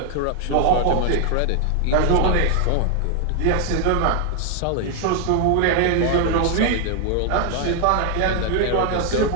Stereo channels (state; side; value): different; both; correlation 0.00